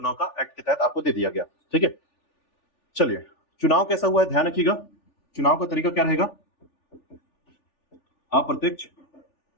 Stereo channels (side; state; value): right; late; 3.4 ms